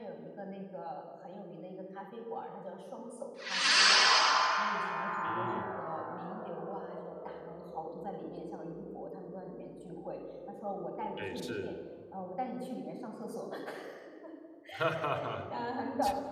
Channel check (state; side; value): identical; both; correlation 1.00